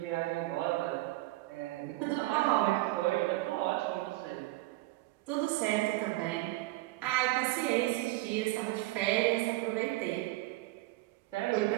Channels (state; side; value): quieter; left; 19.3 dB